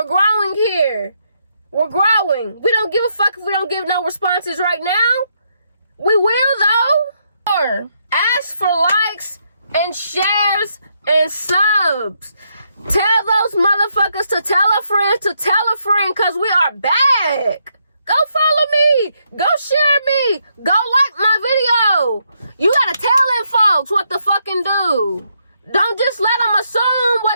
growing here. We're growing. We don't give a fuck if we don't give no responses right now. We will, though. Or ask for likes and shares and subs. Tell those motherfuckers to tell a friend to tell a friend, because we are back. Go follow me. Go share me. Go like my video. You gotta tell them folks what to fucking do. Don't just let them assume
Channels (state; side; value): inverted; both; correlation -0.77